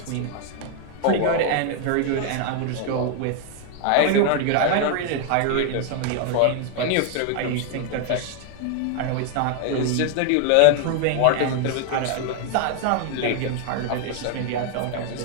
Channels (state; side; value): different; both; correlation 0.00